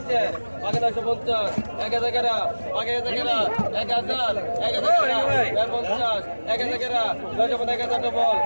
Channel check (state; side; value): inverted; both; correlation -1.00